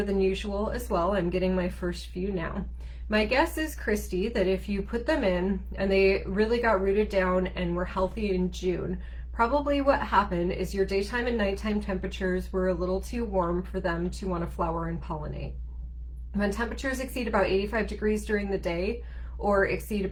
than usual as well. I'm getting my first few now. My guess is, Christy, that if you put them in and they really got rooted down and were healthy in June, probably what happened is your daytime and nighttime temperatures were a little too warm for them to want to flower and pollinate. When temperatures exceed about 85 degrees during the day or exceed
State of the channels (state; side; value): identical; both; correlation 1.00